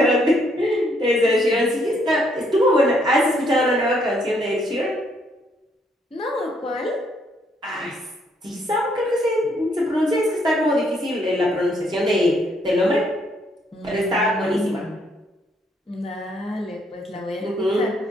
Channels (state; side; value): normal; both; correlation 0.70